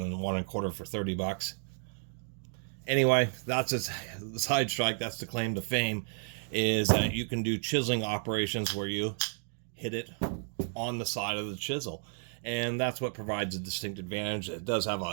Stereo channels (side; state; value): left; silent; 56 dB below the other